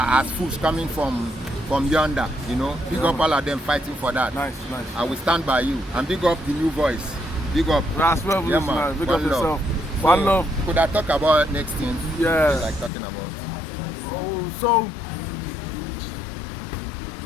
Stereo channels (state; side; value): drops out; right; at 12.9 s